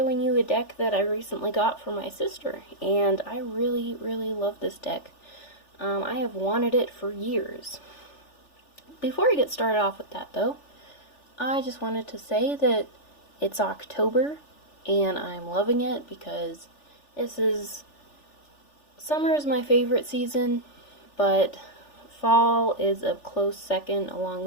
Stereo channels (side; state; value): right; late; 3.4 ms